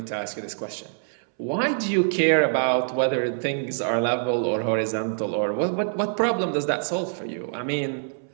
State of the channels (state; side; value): silent; left; 62 dB below the other